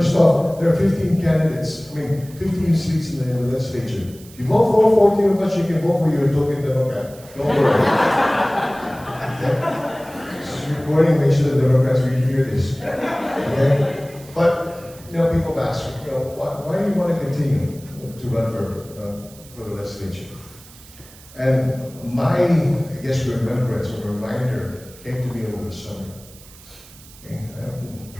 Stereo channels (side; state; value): right; noise; hiss, 22 dB below the sound